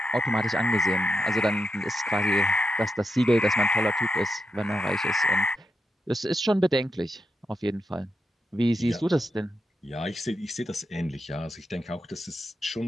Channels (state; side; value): normal; both; correlation 0.86